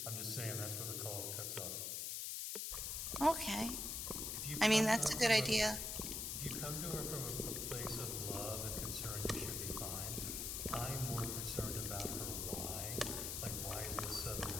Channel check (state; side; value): noise; left; hiss, 2 dB below the sound